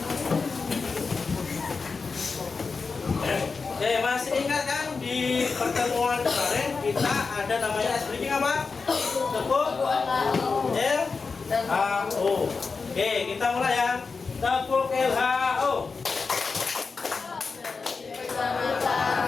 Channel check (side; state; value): right; quieter; 4.6 dB